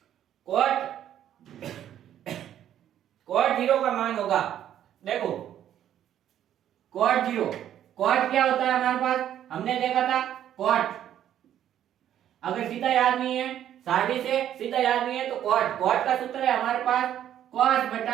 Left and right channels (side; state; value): left; quieter; 10.8 dB